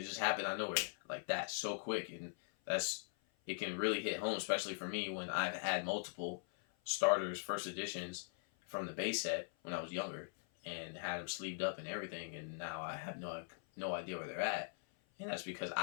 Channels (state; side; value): silent; right; 50 dB below the other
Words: just happened out of nowhere like that, so quick, and it can really hit home, especially for me when I've had multiple starters, first editions from the base set when I was younger, and had them sleeved up and everything, and now I have no idea where they're at, and that's because